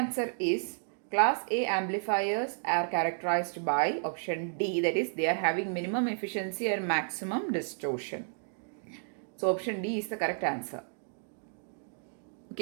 is class A amplifiers are characterized by option D, that is they are having minimum efficiency and maximum distortion. So option D is the correct answer.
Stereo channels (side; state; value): left; silent; digital silence